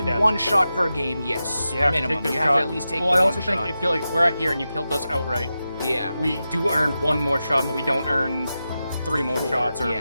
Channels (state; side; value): inverted; both; correlation -0.91